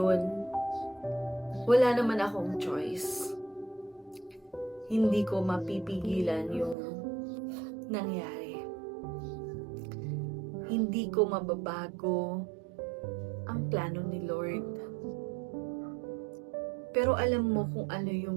wala naman akong choice. Hindi ko mapipigilan yung nangyari. Hindi ko mababago ang plano ni Lord. Pero alam mo kung ano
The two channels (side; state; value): left; drops out; at 6.8 s